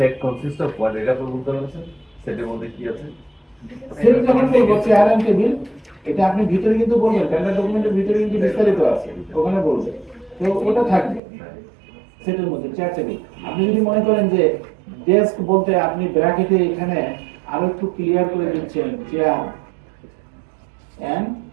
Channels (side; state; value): left; drops out; at 11.2 s